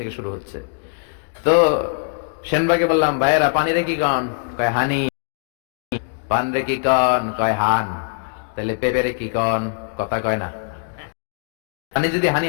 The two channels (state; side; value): silent; right; digital silence